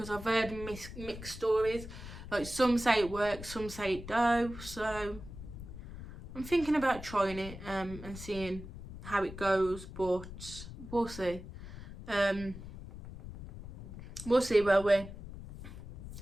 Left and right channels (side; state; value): left; noise; rumble, 12 dB below the sound